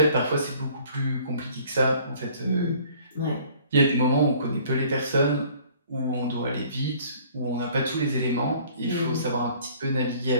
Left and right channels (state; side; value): inverted; both; correlation -0.55